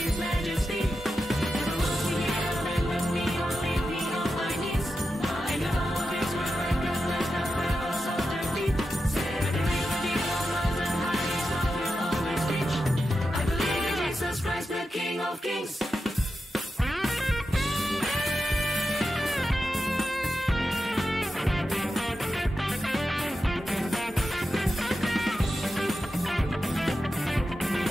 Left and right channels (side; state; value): both; normal; correlation 0.90